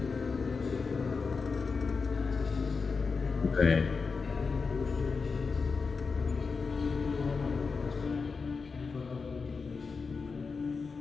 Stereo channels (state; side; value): quieter; right; 4.8 dB